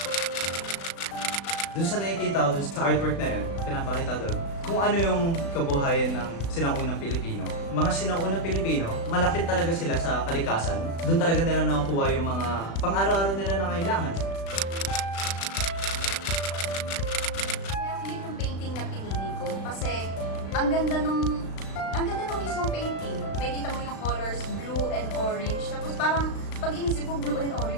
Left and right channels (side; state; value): right; late; 36 ms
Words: Doon sa nakikita ko, doon sa artwork na yun, pinapakita doon, kung ano yung kabuhayan ng sinaunang Pilipino. Mga sinaunang Pilipino, malapit talaga sila sa kalikasan. Doon talaga nila nakukuha yung mga pang-araw-araw nila na kailangan. Kaya yun yung painting na pinili ko kasi ang ganda nung mismong painting. May kita mo yung colors blue and orange. Tapos parang pag inisip mo blue and